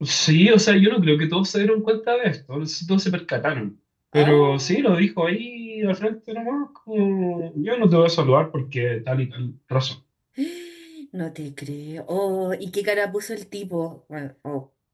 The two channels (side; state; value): both; identical; correlation 1.00